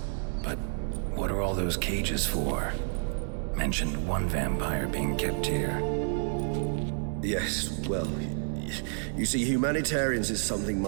But what are all those cages for? Mentioned one vampire being kept here. Yes, well, you see, humanitarians is something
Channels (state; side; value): silent; left; digital silence